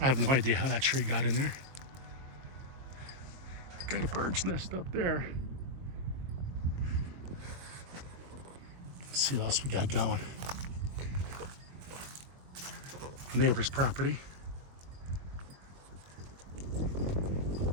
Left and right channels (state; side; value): late; left; 22 ms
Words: have no idea how that tree got in there. Got a bird's nest up there. Let's see what else we got going. neighbor's property.